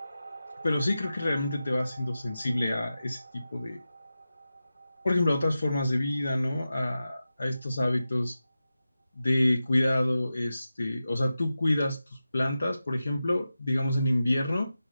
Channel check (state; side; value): inverted; both; correlation -0.93